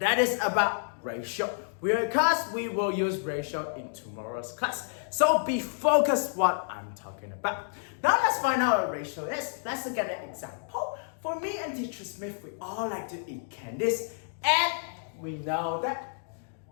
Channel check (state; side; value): silent; right; digital silence